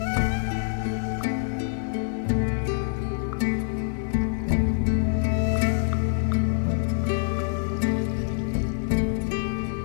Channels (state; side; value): silent; right; digital silence